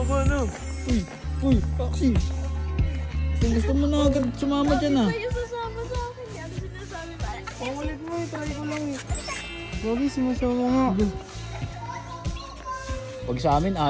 ano? Uy, Axie! Gusto mo na agad sumama dyan ah. Kayo sasama sa akin, di ano sinasabi ba? Ang ulit mo eh. Try ko lang eh. Gagi, sumasama nga. Pag sa amin,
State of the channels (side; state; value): both; identical; correlation 1.00